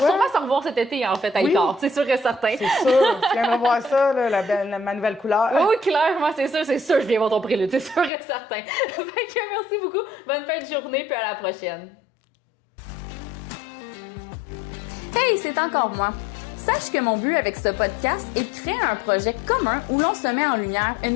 sûrement se revoir cet été en fait à Oui. Icare, c'est sûr et certain. C'est sûr, tu viendras voir ça, là, ma nouvelle couleur. Oui, clairement, c'est sûr, je viens voir ton prélude, c'est sûr et certain. Fait que merci beaucoup, bonne fin de journée, puis à la prochaine. Hey, c'est encore moi. Sache que mon but avec ce podcast est de créer un projet commun où l'on se met en lumière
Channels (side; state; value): right; drops out; at 8.1 s